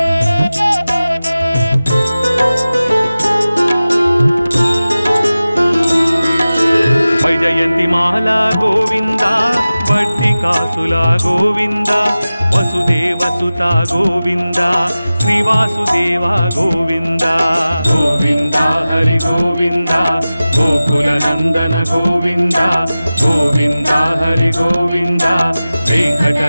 ವೈಜಯಂತಿ ಮಾಲಾ ಗೋವಿಂದ ವರ್ತಿಕಾಸುಲ ಗೋವಿಂದ ವಸುದೇವ ಸುತ ಗೋವಿಂದ ಶ್ರೀವಾಸುದೇವ ಗೋವಿಂದ ಗೋವಿಂದ ಹರಿ ಗೋವಿಂದ ಗೋಕುಲ ನಂದನ ಗೋವಿಂದ ಗೋವಿಂದ ಹರಿ ಗೋವಿಂದ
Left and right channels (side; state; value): both; inverted; correlation -0.96